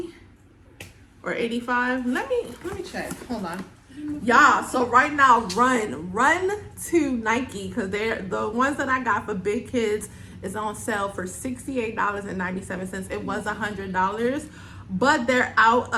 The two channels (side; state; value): both; identical; correlation 1.00